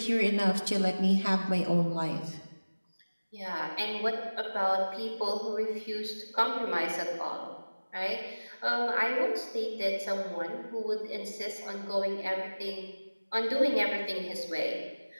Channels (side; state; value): both; inverted; correlation -1.00